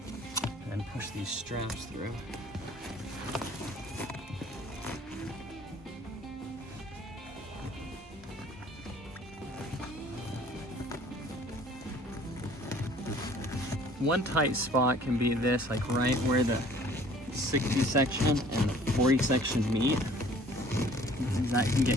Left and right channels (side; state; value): both; normal; correlation 0.53